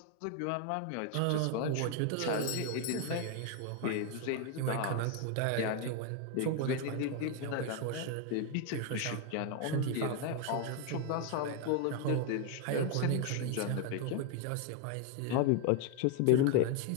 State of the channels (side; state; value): both; different; correlation 0.01